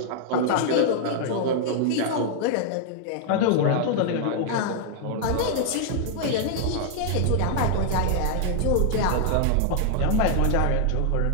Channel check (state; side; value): different; both; correlation -0.01